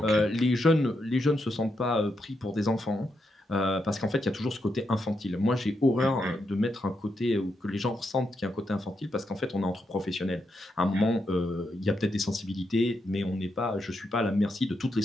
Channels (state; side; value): normal; both; correlation 0.82